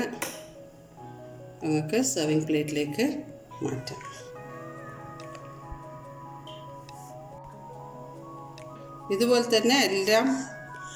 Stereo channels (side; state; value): both; identical; correlation 1.00